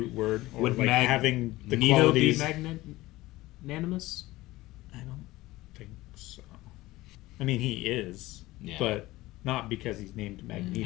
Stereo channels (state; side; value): quieter; right; 18.4 dB